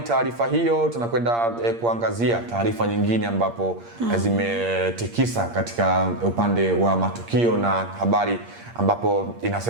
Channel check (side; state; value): left; late; 8.6 ms